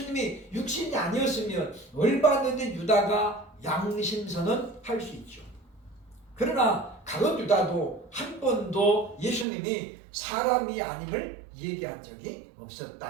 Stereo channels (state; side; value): drops out; left; at 9.5 s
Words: 육신이 아니었으면 열받는데 유다가 양심선언 할 수 있죠. 그러나 가룟 유다도 한 번도 예수님이 사람이 아님을 얘기한 적이